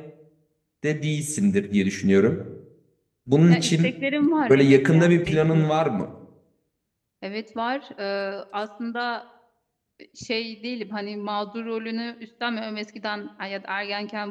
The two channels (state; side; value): identical; both; correlation 1.00